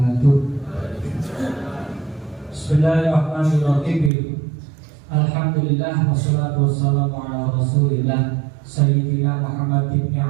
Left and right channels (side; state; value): left; drops out; at 4.1 s